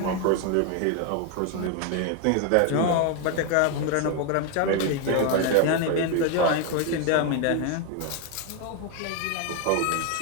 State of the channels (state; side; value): different; both; correlation 0.01